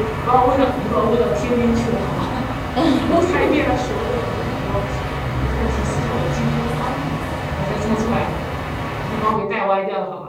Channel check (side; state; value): both; identical; correlation 1.00